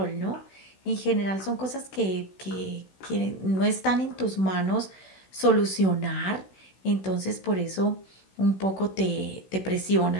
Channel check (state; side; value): late; right; 16 ms